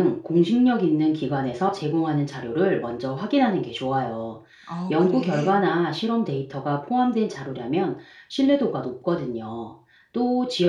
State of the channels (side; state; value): both; identical; correlation 1.00